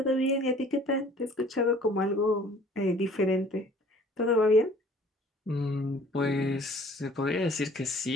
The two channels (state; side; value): normal; both; correlation 0.52